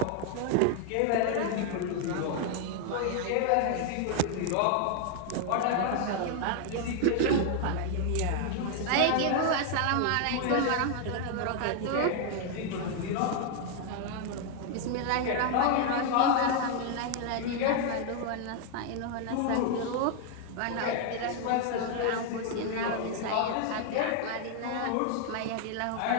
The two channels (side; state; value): both; different; correlation 0.00